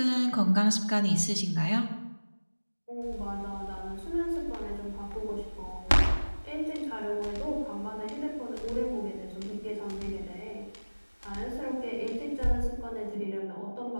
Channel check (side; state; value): both; inverted; correlation -1.00